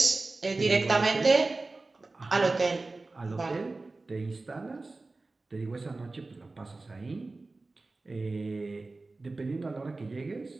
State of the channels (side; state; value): left; quieter; 3.4 dB